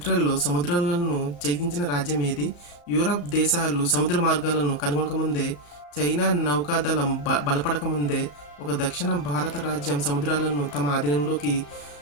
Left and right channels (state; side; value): late; right; 34 ms